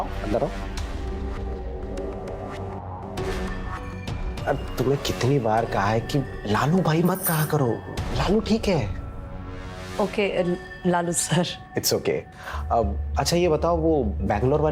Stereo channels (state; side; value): identical; both; correlation 1.00